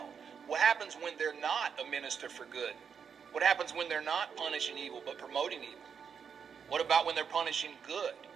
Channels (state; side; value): quieter; left; 6.8 dB